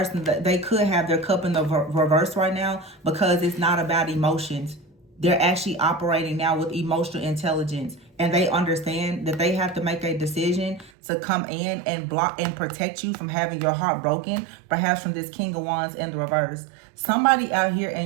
they could have their cup in the reverse right now because it's not about emotions. They're actually operating now with emotional intelligence. And they understand that they have to make a decision to come in and block and protect you from having your heart broken, perhaps from this King of Wands in the reverse. Somebody out here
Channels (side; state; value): left; drops out; at 10.9 s